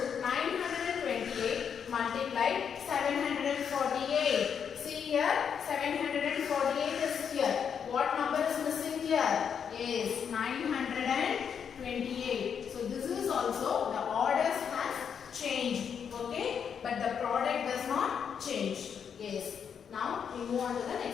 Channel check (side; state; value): right; quieter; 7.4 dB